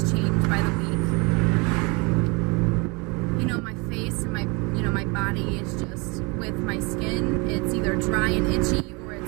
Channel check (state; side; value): quieter; left; 29.0 dB